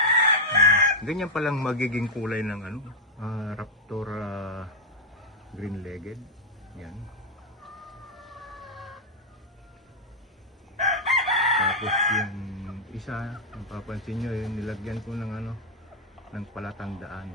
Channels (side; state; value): both; normal; correlation -0.01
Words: Ganyan palang magiging kulay ng Raptor green-legged. Yan. Tapos yung isa, mapapansin nyo, yung nilagyan ko ng ng palatandaan.